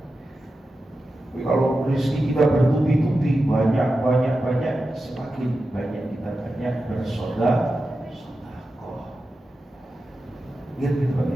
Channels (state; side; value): normal; both; correlation 0.92